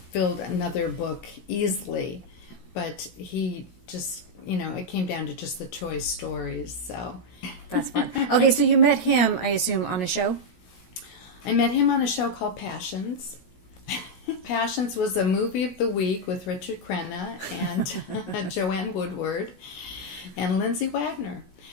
filled another book easily, but he just, it came down to just the choice stories. So That's fun. Okay, so you met him, I assume, on a show? I met him on a show called Passions. Passions was a movie of the week with Richard Crenna and Joanne Woodward and Lindsay Wagner.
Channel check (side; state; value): right; late; 16 ms